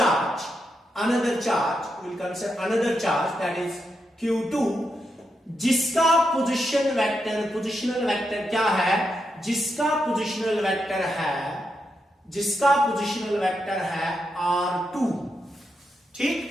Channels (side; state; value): both; normal; correlation 0.84